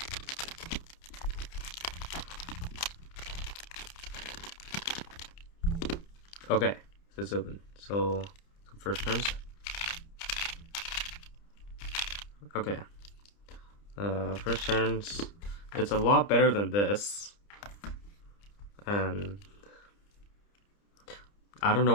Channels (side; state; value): right; late; 30 ms